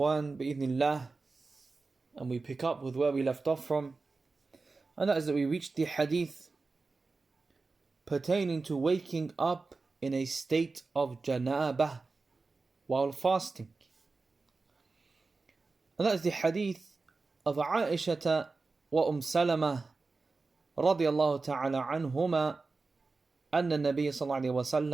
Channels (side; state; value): left; quieter; 3.9 dB